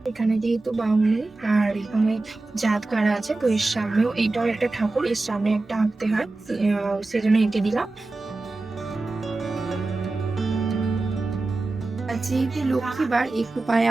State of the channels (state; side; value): quieter; left; 3.2 dB